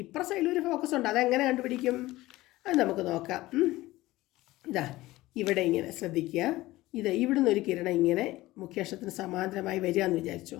ഇപ്പുറ സൈഡിലൊരു ഫോക്കസ് ഉണ്ട്. അതെങ്ങനെ കണ്ടുപിടിക്കും? അത് നമുക്ക് നോക്കാം. ഇവിടെ ഇങ്ങനെ ശ്രദ്ധിക്കുക. ഇവിടുന്ന് ഒരു കിരണം ഇങ്ങനെ മുഖ്യ അക്ഷത്തിന് സമാന്തരമായി വരിക എന്ന് വിചാരിച്ചോ.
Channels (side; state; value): right; quieter; 17.9 dB